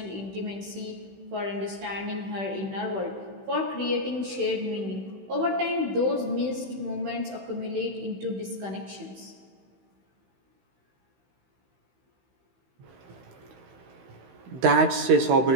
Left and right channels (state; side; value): late; left; 16 ms